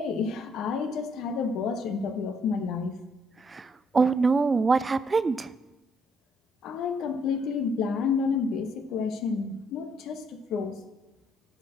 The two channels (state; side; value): normal; both; correlation 0.71